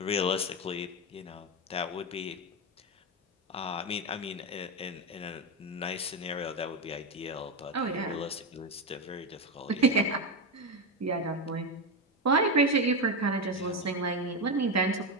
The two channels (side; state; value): both; normal; correlation 0.11